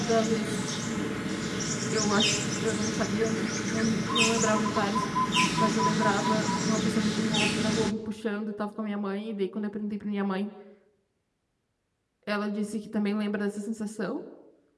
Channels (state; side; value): identical; both; correlation 1.00